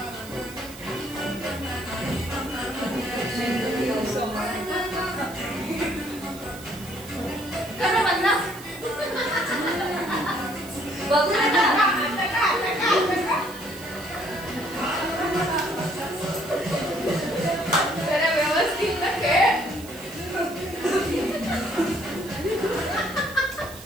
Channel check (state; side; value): noise; right; hiss, 17 dB below the sound